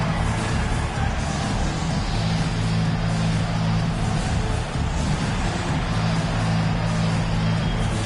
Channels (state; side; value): identical; both; correlation 1.00